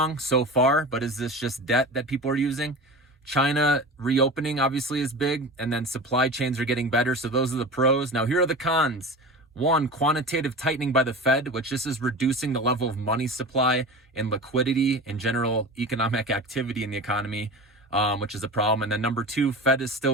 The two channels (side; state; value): both; normal; correlation 0.31